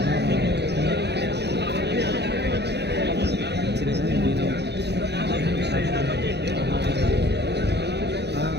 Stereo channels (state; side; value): late; left; 0.49 ms